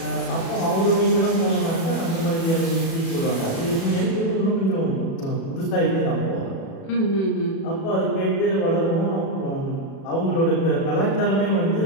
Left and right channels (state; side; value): late; right; 36 ms